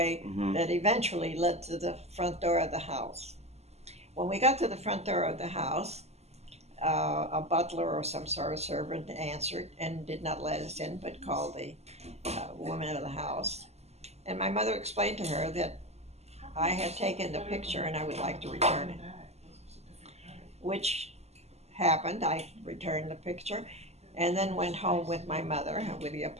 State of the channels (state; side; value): late; left; 0.31 ms